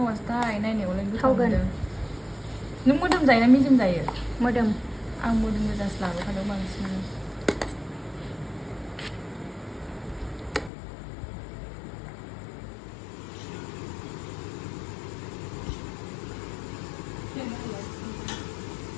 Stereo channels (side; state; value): right; drops out; at 10.7 s